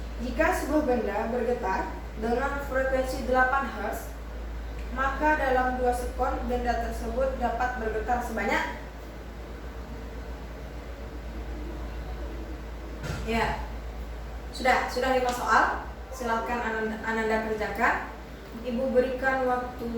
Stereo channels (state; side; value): identical; both; correlation 1.00